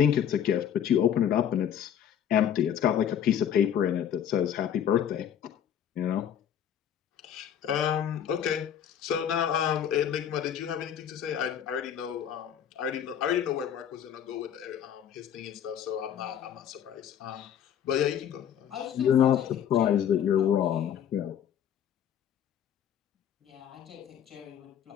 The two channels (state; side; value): quieter; right; 9.3 dB